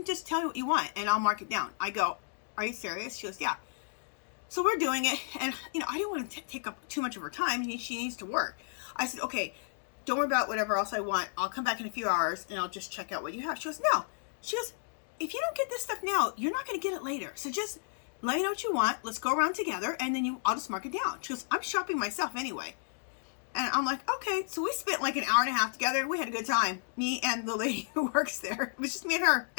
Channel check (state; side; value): silent; right; digital silence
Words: just tell me what you want and I'll mark it down. I go, are you serious? She goes, yeah. So we're doing it, and you know, I didn't want to take up too much of her time. She needs to work. I said, okay, don't worry about whatever else I want. I'll come back in a few hours and I'll just check out what you have. She goes, no. She goes, if you don't get this stuff now, you're not going to get it later. So just let me know what you want. Let's go around together, and then I'll just mark it down. She goes, I'm shopping myself anyway. And I'm like, okay. So we spent like an hour and a half together. We had a good time. Me and the lady who works there. It was just me and her